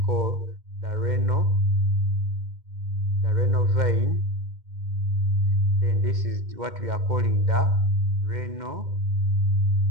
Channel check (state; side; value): late; left; 2.1 ms